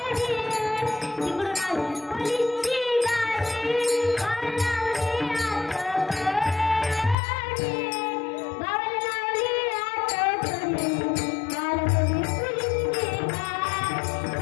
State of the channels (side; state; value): right; drops out; at 7.2 s